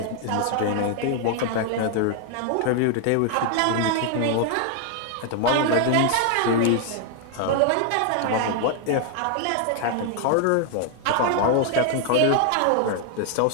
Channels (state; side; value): different; both; correlation 0.00